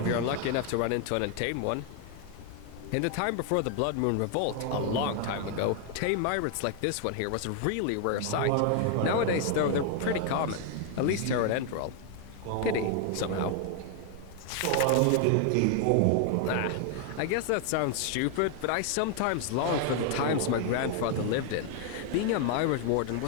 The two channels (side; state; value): both; different; correlation 0.00